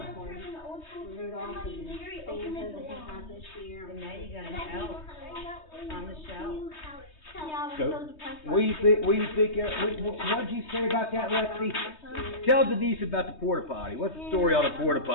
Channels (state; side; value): late; right; 3.2 ms